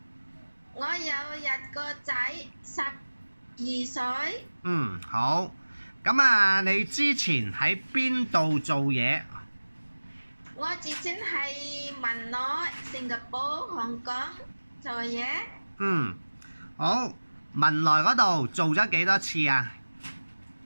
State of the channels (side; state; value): both; inverted; correlation -1.00